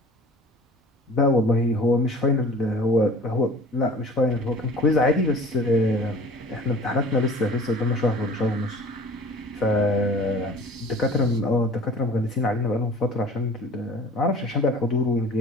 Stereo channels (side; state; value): both; normal; correlation 0.44